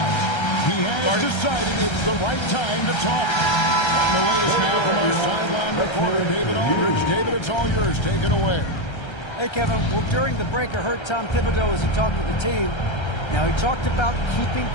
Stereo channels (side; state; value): right; late; 1.3 ms